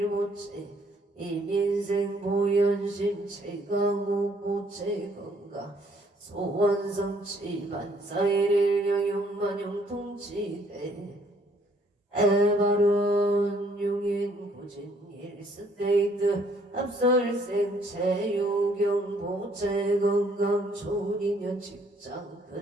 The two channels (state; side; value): normal; both; correlation 0.64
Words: 이민생 보현심 최강옥보체 건강 소원성치 만사일일 여용만용동치대 에바론 용인 고진 일스테이트 합설생 체유경보체 건강 초인년 직장